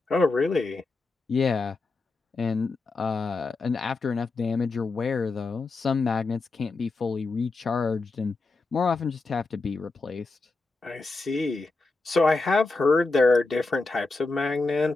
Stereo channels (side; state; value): right; quieter; 3.6 dB